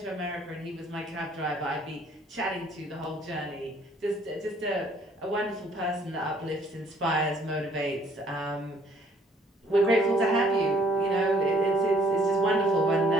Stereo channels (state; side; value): normal; both; correlation 0.62